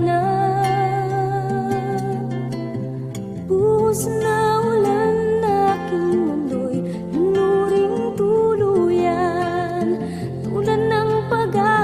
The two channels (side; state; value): both; identical; correlation 1.00